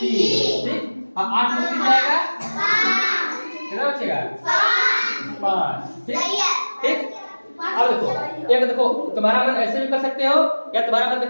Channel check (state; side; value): inverted; both; correlation -1.00